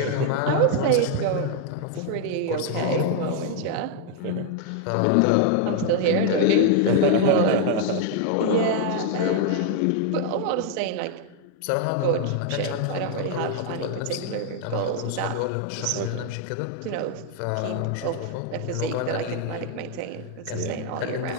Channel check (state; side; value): different; both; correlation 0.00